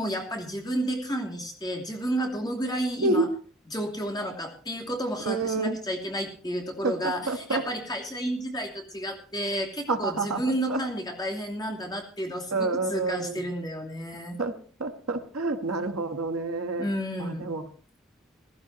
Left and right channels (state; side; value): normal; both; correlation 0.37